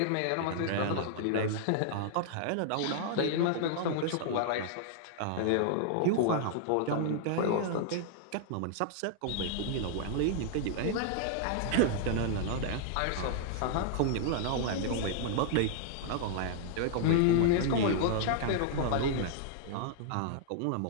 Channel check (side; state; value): both; different; correlation -0.01